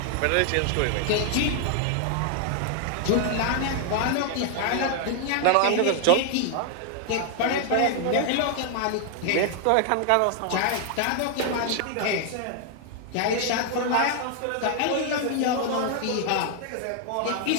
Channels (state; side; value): different; both; correlation 0.00